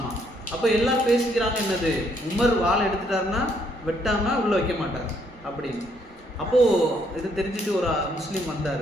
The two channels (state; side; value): normal; both; correlation 0.70